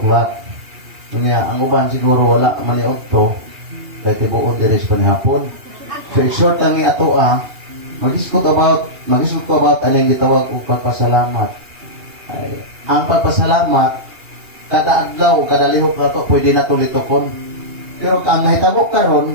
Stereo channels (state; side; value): late; left; 2.8 ms